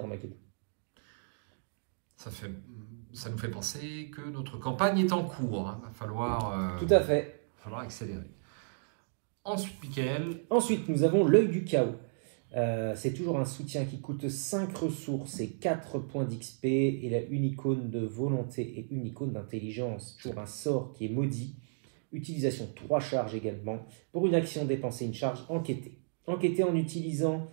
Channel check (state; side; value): silent; left; digital silence